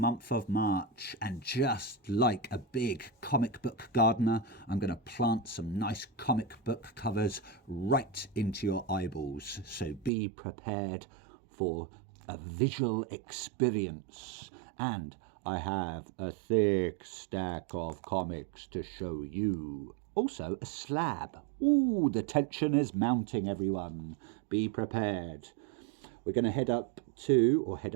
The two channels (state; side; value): drops out; left; at 10.1 s